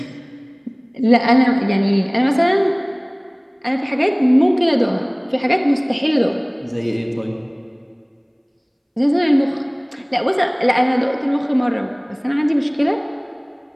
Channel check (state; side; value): identical; both; correlation 1.00